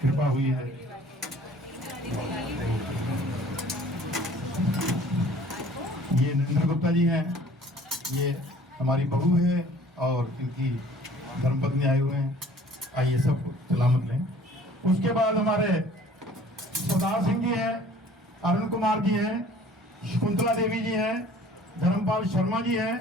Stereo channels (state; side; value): normal; both; correlation 0.51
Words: कृपा हुई है। ये नरेंद्र गुप्ता जी हैं, ये हमारी बहू है और इनकी धर्मपत्नी आए हुए हैं। आइए सब सलामत लें। उसके बाद हमारे सरदार सिंह जी हैं, अरुण कुमार जी हैं, शकुंतला देवी जी हैं, धर्मपाल शर्मा जी